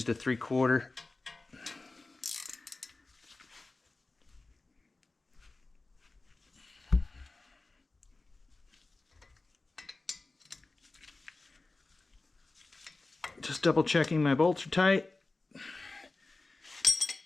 a 3/4. Just double checking my bolts are tight.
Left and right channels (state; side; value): quieter; right; 3.3 dB